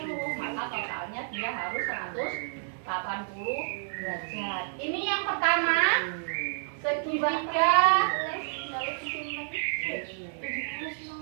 Maka totalnya dia harus 180 derajat. Ini yang pertama, segitiga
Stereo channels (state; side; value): silent; left; digital silence